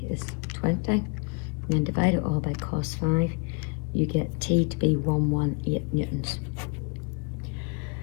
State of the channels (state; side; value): quieter; right; 33.2 dB